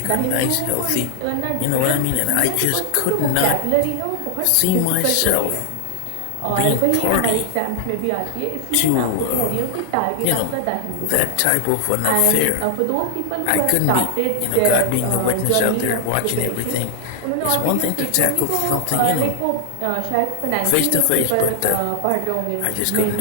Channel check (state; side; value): different; both; correlation 0.00